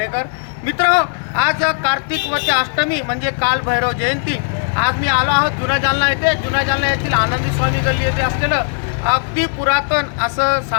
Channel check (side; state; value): right; silent; 64 dB below the other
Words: मित्रांनो, आज कार्तिक वती अष्टमी म्हणजे काल भैरव जयंती। आज मी आलो आहोत जुना जालना येथे। जुना जालना येथील आनंदी स्वामी गल्ली येथे असलेलं अगदी पुरातन असं